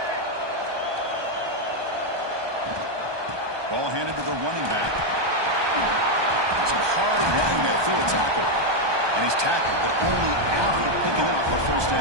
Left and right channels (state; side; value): late; left; 1.2 ms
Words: Ball handed to the running back. Some hard running there through a tackle. And he's tackled, but only after picking up a first